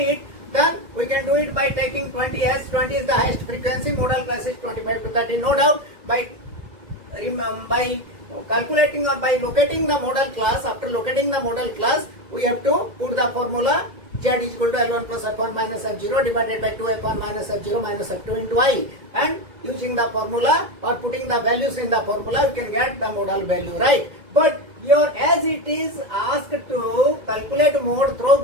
then we can do it by taking 20 as 20 is the highest frequency, modal class is 25 to 30, no doubt. By calculating or by locating the model class. After locating the model class, we have to put the formula z is equal to L1 plus F1 minus F0 divided by 2 F1 minus F0 minus F2 into I. And using the formula or putting the values in the formula, you can get the model value, right? But here, as it is asked to calculate mode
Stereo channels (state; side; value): late; left; 2.1 ms